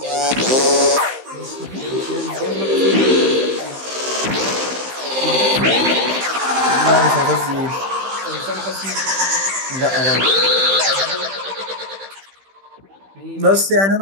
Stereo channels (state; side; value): late; left; 15 ms